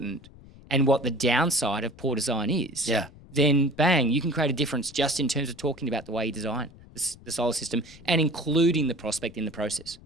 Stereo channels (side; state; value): left; noise; rumble, 21 dB below the sound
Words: and what the downside of poor design is, then bang, you can create a difference just in terms of talking about the way you design the solar system and including the prospect in the process.